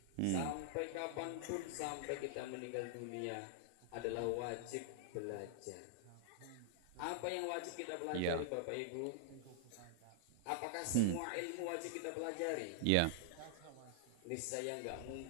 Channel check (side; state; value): both; different; correlation -0.01